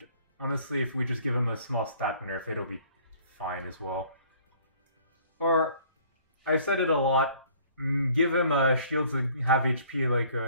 honestly, if we just give him a small stat nerf, it'll be fine as well. Or, I've said it a lot, give him shields that have HP like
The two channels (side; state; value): both; inverted; correlation -0.55